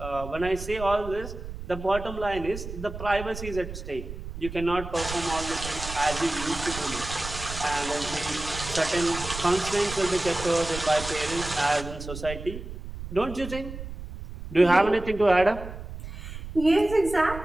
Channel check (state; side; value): noise; right; rumble, 10 dB below the sound